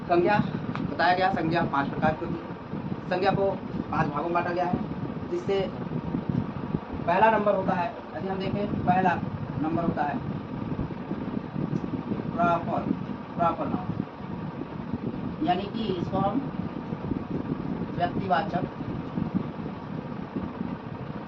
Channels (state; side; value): identical; both; correlation 1.00